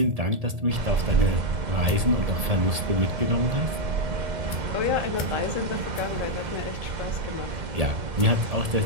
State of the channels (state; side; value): late; left; 1.7 ms